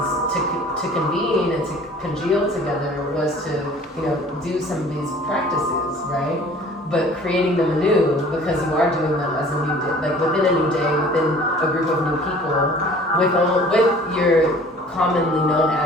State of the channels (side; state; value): both; normal; correlation 0.49